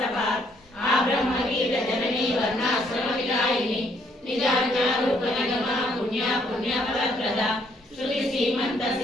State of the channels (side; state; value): both; normal; correlation 0.68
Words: आब्रह्मवीर जननी वर्णाश्रम विदायिनी निजाज्ञारूप निगमा पुण्या पुण्यफलप्रदा श्रुति सीमंत